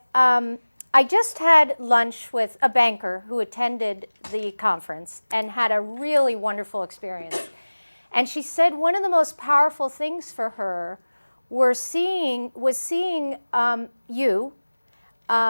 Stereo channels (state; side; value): inverted; both; correlation -1.00